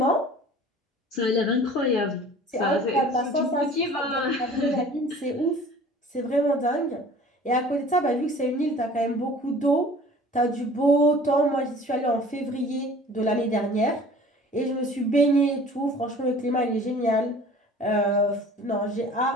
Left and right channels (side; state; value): both; normal; correlation 0.46